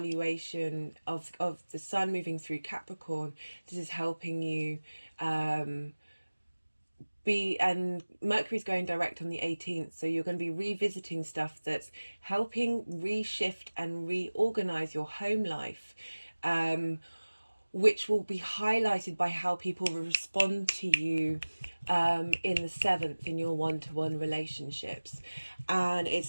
of the Sun moving through Capricorn. This is helping you and Mercury's going direct on the 18th, so you're going to be revisiting stuff that's helping reshift and reorganize your home life, which will be highlighted by how people respond to you in the 7th in your one-to-one relationships. And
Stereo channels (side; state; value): both; inverted; correlation -1.00